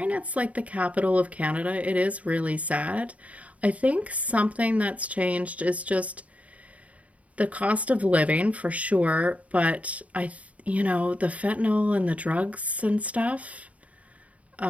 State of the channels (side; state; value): left; late; 0.068 ms